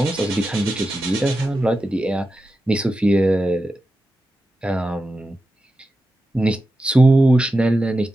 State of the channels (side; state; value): both; normal; correlation 0.91